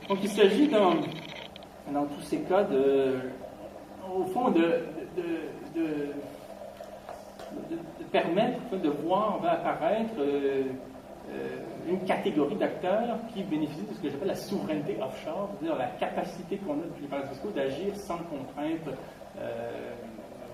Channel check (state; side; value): identical; both; correlation 1.00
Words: Donc il s'agit dans tous ces cas au fond de permettre de voir apparaître une catégorie d'acteurs qui bénéficient de ce que j'appelle la souveraineté offshore, c'est-à-dire la capacité qu'on a depuis les paradis fiscaux d'agir sans contraintes